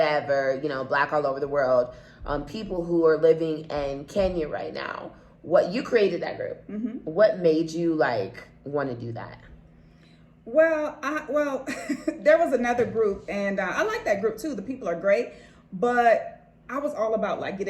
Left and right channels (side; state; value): both; identical; correlation 1.00